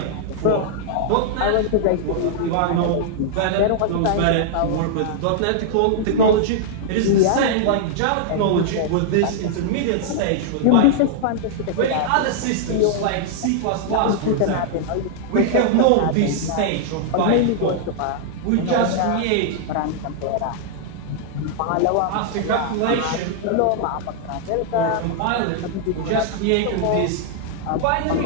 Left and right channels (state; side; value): different; both; correlation -0.01